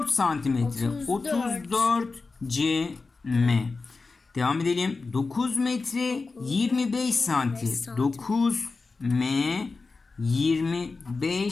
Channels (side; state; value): right; quieter; 4.0 dB